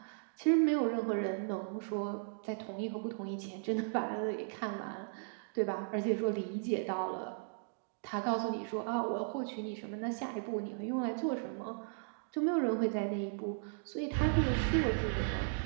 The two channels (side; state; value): left; silent; digital silence